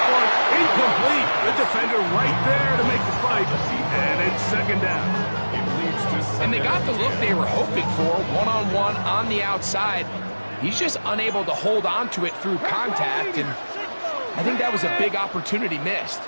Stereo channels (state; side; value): inverted; both; correlation -1.00